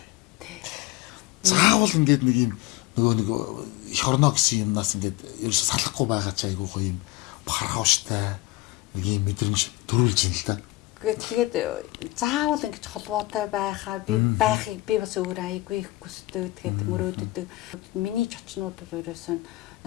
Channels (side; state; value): right; quieter; 19.9 dB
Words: Тий. Заавал ингээд нэг юм нэг эх орно гэсэн юмнаас ингээд ерөөсө салахгүй байгаа ч айгүй гоё юм хархавштай нэг юм мэдрэмж төрүүлж ин л да. Тэгээд заавал ингэж холбоотой байхаа байхыг би бас өөр айгүй их хүсдэг. Тэгээд мөрөөддөг. Миний чочнууд бол ерөөсөн